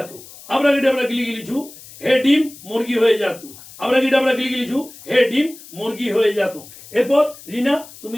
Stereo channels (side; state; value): left; noise; hiss, 19 dB below the sound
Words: আবরা গিটাবরা গিলি গিলি ঝু, হে ডিম মুরগি হয়ে যেত। আবরা গিটাবরা গিলি গিলি ঝু, হে ডিম মুরগি হয়ে যেত। এরপর রিনা,